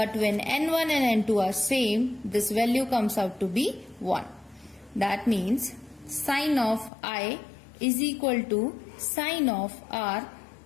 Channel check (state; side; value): drops out; right; at 6.9 s